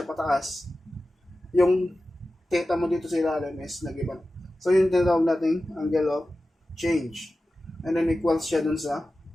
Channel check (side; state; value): both; normal; correlation 0.94